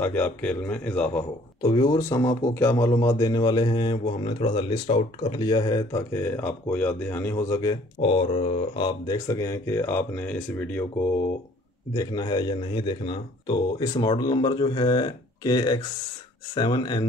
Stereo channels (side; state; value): both; normal; correlation 0.57